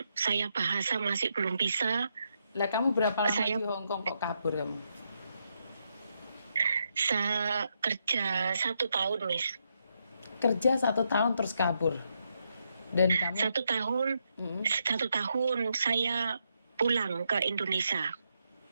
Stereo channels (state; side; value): inverted; both; correlation -0.80